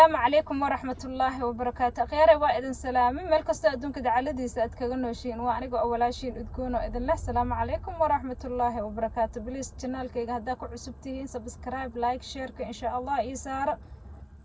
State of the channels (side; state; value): both; identical; correlation 1.00